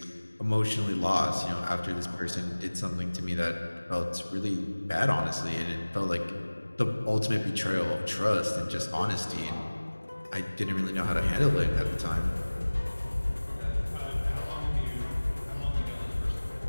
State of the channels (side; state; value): both; inverted; correlation -1.00